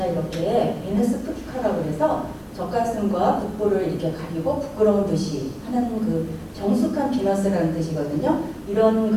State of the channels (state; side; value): identical; both; correlation 1.00